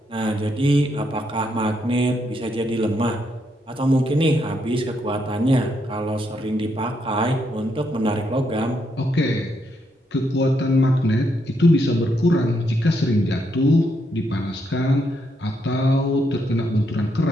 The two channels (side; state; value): both; normal; correlation 0.77